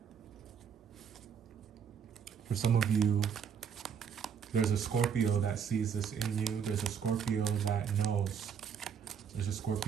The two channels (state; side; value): quieter; left; 7.3 dB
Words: For some of you, there's a Scorpio that sees this in you. There's a Scorpio that knows. There's a